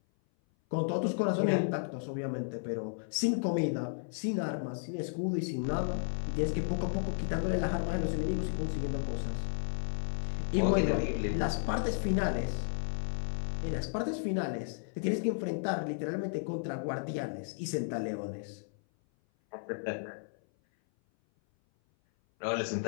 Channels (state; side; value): silent; right; 55 dB below the other